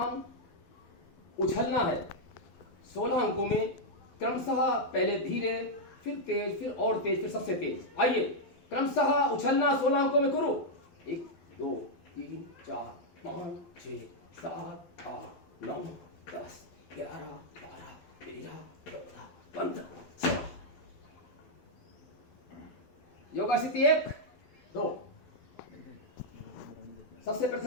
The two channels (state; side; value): late; right; 12 ms